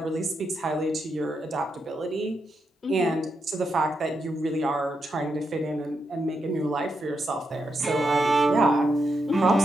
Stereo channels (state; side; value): normal; both; correlation 0.83